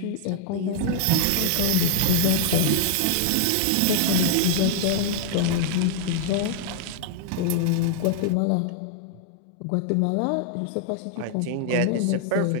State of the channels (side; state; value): both; different; correlation 0.00